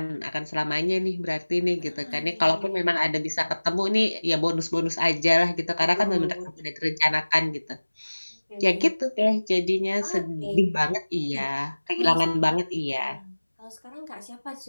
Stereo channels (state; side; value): inverted; both; correlation -1.00